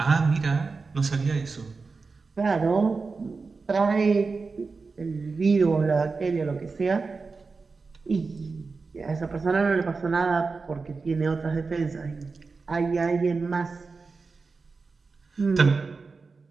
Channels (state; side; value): quieter; left; 4.4 dB